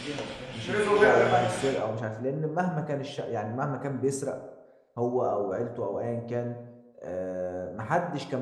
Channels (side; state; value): both; identical; correlation 1.00